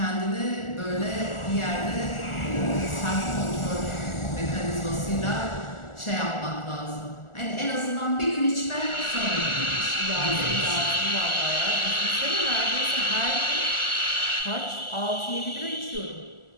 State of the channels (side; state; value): right; late; 1.4 ms